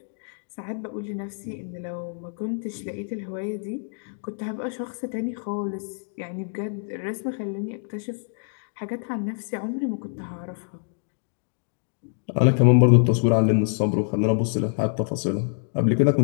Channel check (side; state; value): right; silent; 61 dB below the other